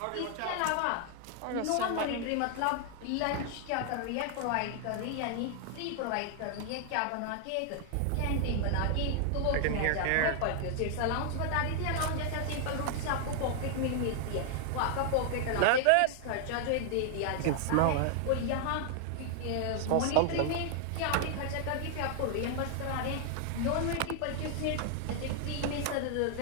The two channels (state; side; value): different; both; correlation 0.00